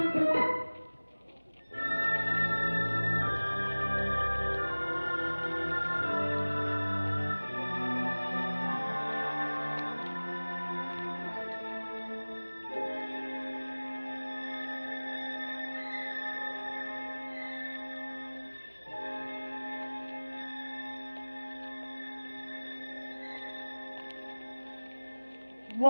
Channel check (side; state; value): both; inverted; correlation -1.00